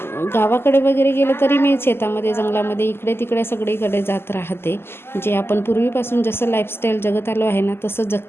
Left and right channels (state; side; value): late; right; 0.12 ms